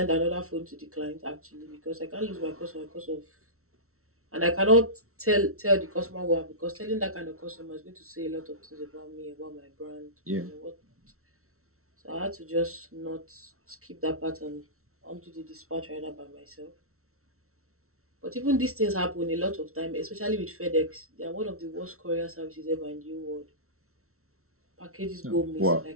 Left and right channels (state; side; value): late; left; 0.63 ms